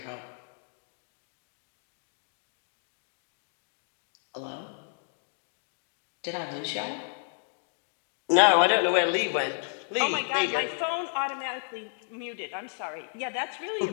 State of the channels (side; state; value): right; silent; digital silence